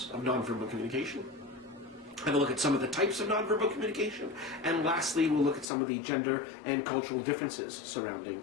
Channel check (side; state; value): right; drops out; at 5.7 s